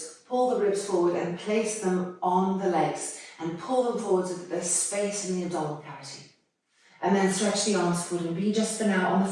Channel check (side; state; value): both; identical; correlation 1.00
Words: pull the ribs forward and place them on the legs and pull them forward so that there's space in the abdominal cavity. And then stretch the arms forward and be just for now on the